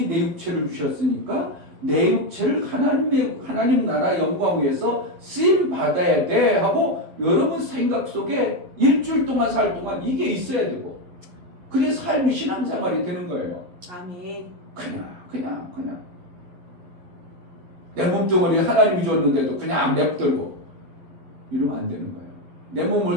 내 육체를 주셨으니까 내 육체를 하나님 나라 영광 위해서 쓰임 받아야 돼 하고 여러분 생각 속에 일주일 동안 살 동안 이게 있어야 되고 그게 삶이 신앙생활이 되는 거예요. 아멘. 그냥 내 몸뚱어리 하나님이 줬는데도 그냥 냅두고 이러면 안 되는 거예요. 내 몸을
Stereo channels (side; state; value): left; late; 11 ms